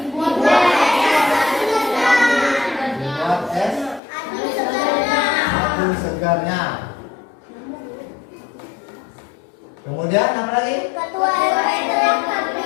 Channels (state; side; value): drops out; right; at 4.0 s